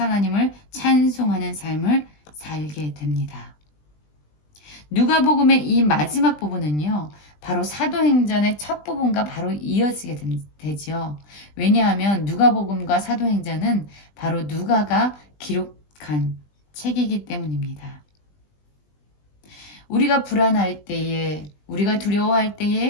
하나님을 찬송하는 삶을 살게 됩니다. 누가복음의 이 마지막 부분은요, 바로 사도행전의 첫 부분과 바로 이어지게 되죠. 왜냐하면 누가복음과 사도행전은 바로 누가가 기록한 책이기 때문입니다. 우리가 불안할 때에, 우리가 두려워할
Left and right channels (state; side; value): late; right; 20 ms